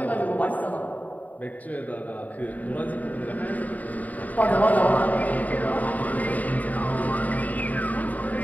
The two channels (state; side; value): late; right; 0.074 ms